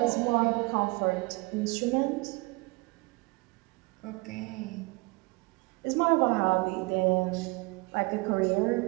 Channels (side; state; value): left; quieter; 26.2 dB